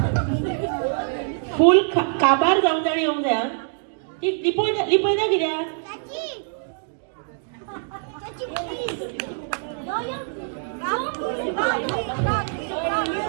फुल काबार जाऊन जाणी येऊन जाय ती लिपय ना कित्याक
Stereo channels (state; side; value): silent; left; digital silence